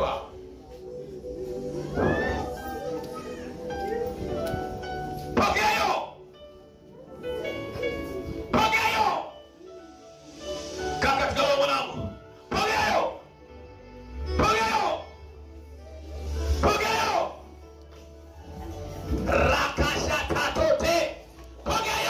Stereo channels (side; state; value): both; identical; correlation 1.00